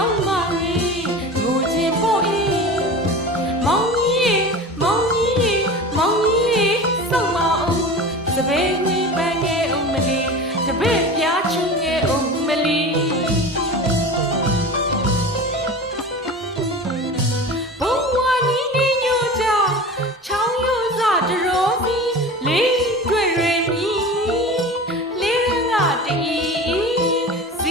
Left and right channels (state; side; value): normal; both; correlation 0.33